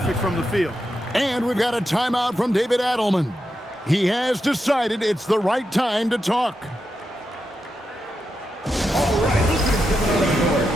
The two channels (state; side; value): normal; both; correlation 0.87